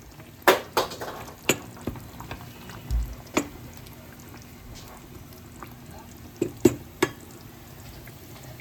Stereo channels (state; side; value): identical; both; correlation 1.00